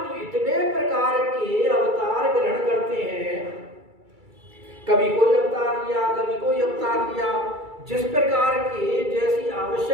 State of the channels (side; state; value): left; late; 2.3 ms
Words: इतने प्रकार के अवतार ग्रहण करते हैं, कभी कोई अवतार लिया, कभी कोई अवतार लिया, जिस प्रकार के जैसी